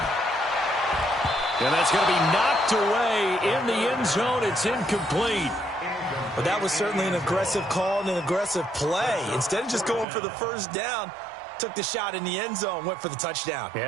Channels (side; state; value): left; drops out; at 10.1 s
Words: And that's going to be knocked away in the end zone. It's incomplete. But that was certainly an aggressive call and an aggressive play. Instead of just going for the first down, took the shot in the end zone, went for the touchdown.